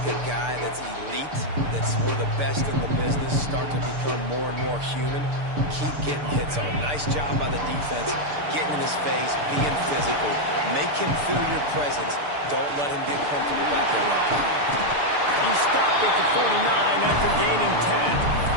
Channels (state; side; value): late; left; 6.8 ms